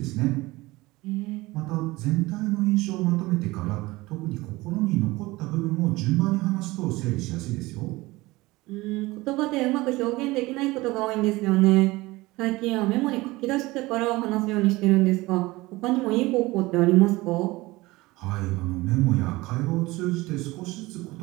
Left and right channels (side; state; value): left; quieter; 20.6 dB